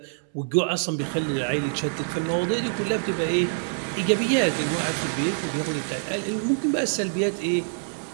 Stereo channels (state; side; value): silent; left; 61 dB below the other